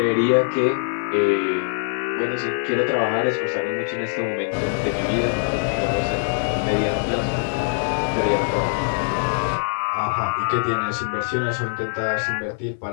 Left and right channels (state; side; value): silent; right; 64 dB below the other